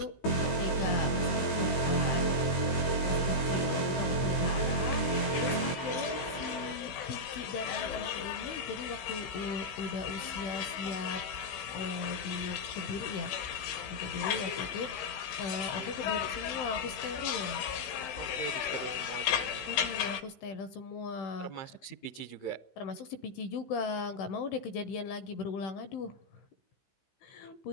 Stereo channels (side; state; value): right; late; 15 ms